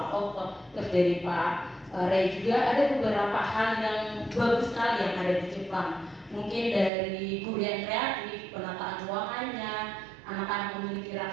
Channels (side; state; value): left; drops out; at 6.9 s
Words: Otto, terus dari Pak Ray juga ada beberapa hal yang bagus sekali yang ada di Jepang. Mungkin dari guru yang kreatif, penataan ruangannya, anak-anak memiliki